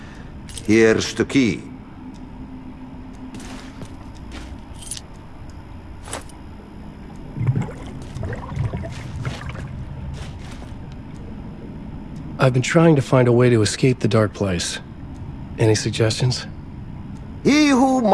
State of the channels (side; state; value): both; identical; correlation 1.00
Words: Here's the key. I've been trying to find a way to escape the dark place. Any suggestions? He who